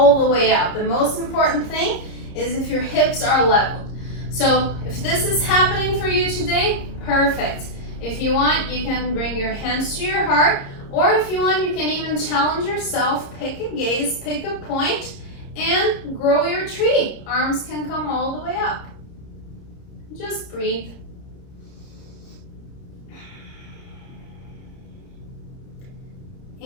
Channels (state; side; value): late; right; 30 ms